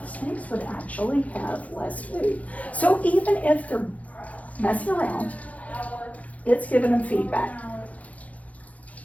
snakes would actually have less food. So even if they're messing around, it's giving them feedback.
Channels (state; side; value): late; right; 0.069 ms